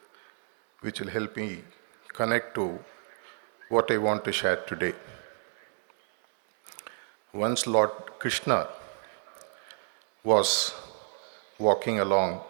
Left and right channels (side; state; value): left; silent; digital silence